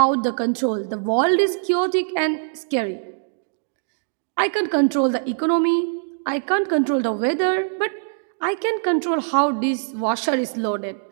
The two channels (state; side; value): silent; left; digital silence